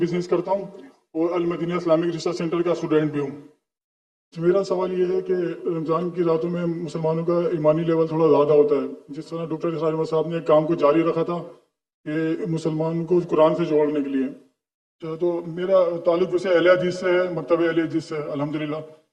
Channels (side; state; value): both; identical; correlation 1.00